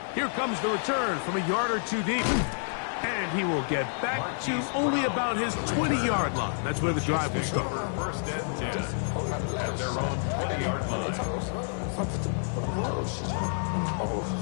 Here comes the return from a yard or two deep. And he will get back to only about his 20-yard line. That's where the drive will start. First and 10 at their own 20-yard line.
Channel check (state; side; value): silent; right; 59 dB below the other